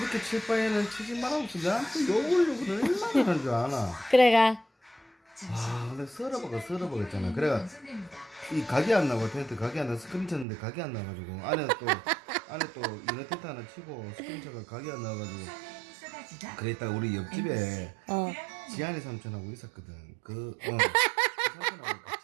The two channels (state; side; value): drops out; left; at 10.5 s